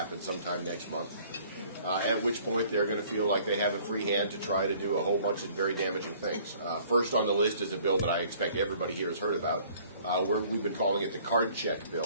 sometime next month, at which point they're going to feel like they have a free hand to try to do a whole bunch of very damaging things. First on the list is a bill that I expect everybody here has heard about. We've been calling it the card check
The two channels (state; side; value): inverted; both; correlation -0.56